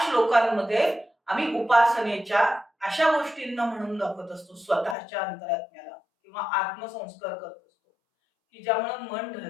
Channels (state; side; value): drops out; right; at 5.0 s